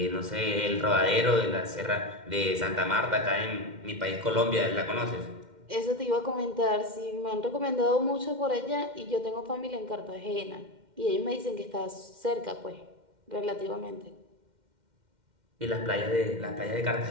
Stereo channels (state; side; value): late; left; 2.1 ms